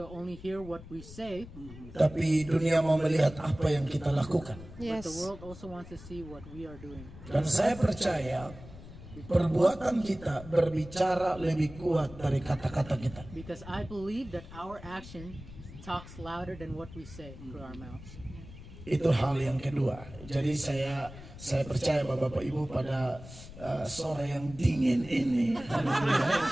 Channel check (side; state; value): left; noise; rumble, 16 dB below the sound